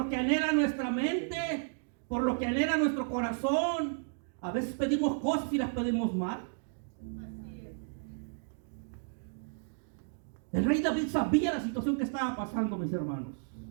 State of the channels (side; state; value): left; silent; digital silence